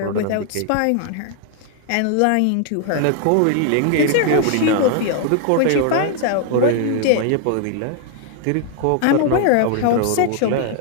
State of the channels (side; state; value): both; different; correlation 0.00